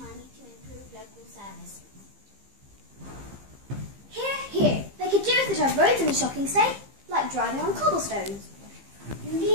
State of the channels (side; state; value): left; late; 15 ms